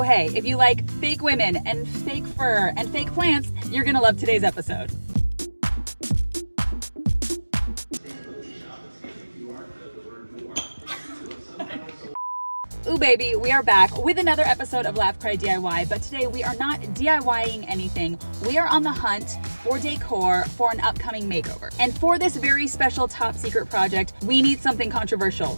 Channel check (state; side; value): inverted; both; correlation -1.00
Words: hey, if you like fake women and fake fur and fake plants, you're gonna love today's episode. Ooh baby, we are back with another episode of Laugh Cry DIY, but today we are not DIYing anything. We are on the hunt for decor for an upcoming makeover. And for this very special top secret project, we need something controversial.